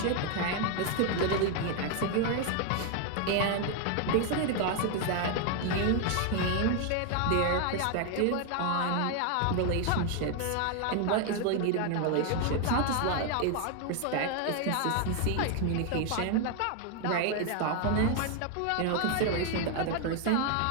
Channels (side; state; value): both; different; correlation 0.01